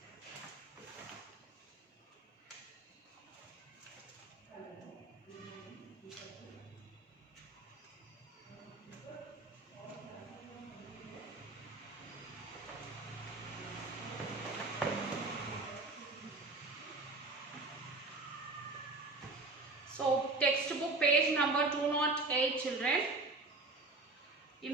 So, textbook page number 208, children.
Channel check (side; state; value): left; quieter; 3.4 dB